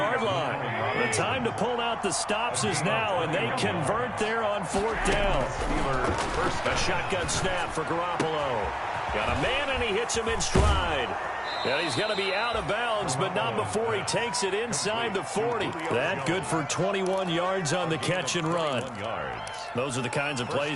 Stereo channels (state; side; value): identical; both; correlation 1.00